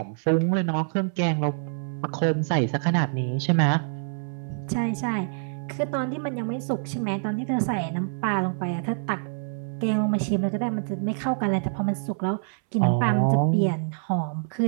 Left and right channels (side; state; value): left; silent; 61 dB below the other